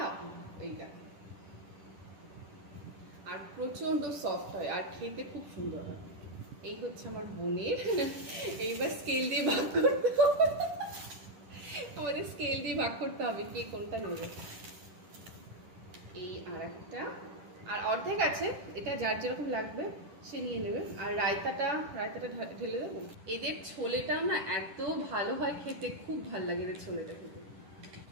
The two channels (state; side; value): late; left; 10 ms